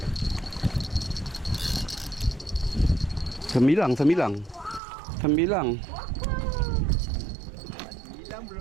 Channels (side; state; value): left; drops out; at 4.8 s